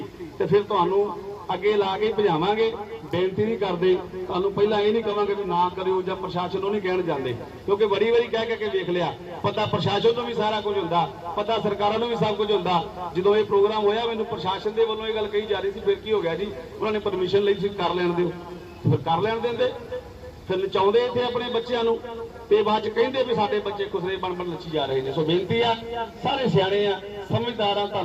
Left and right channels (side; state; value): both; identical; correlation 1.00